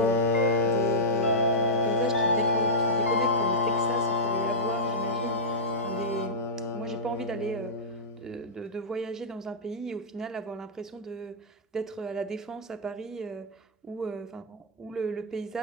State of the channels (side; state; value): both; normal; correlation -0.11